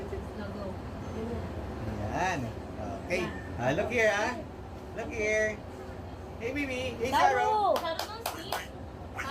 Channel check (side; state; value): both; identical; correlation 1.00